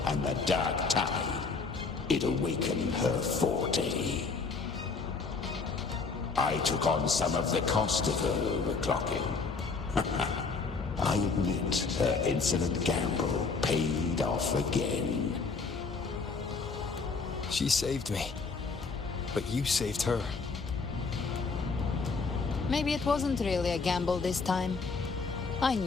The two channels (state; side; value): quieter; right; 4.6 dB